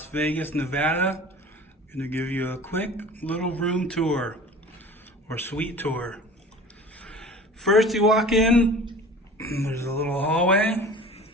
Vegas, Nevada. I'm going to give you a quick little room tour or suite tour. First you walk in, there's a little hallway.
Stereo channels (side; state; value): both; normal; correlation 0.42